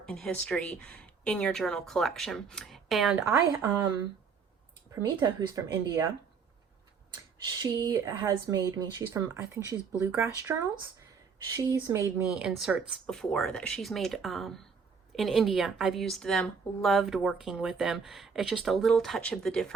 and history in your journal collection. And Pramita, who's from India, she has made me, she's from, I think she's Bluegrass Journals. She's made me inserts before that she's made in India. I've used them, loved working with them. It's just a little touch of the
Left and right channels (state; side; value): quieter; left; 5.8 dB